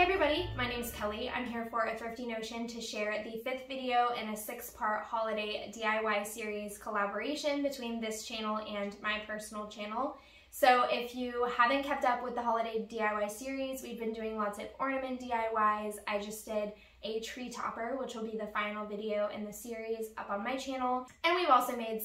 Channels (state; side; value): identical; both; correlation 1.00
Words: Hey everybody, my name is Kelly. I'm here for a Thrifty Notion to share the 5th video in a 6-part holiday DIY series collaboration between this channel and my personal channel. So if you haven't kept up with the holiday DIY series, we've been doing lots of ornament DIYs. I just did a tree topper, which will be the final video in the series up on my channel. And we've also made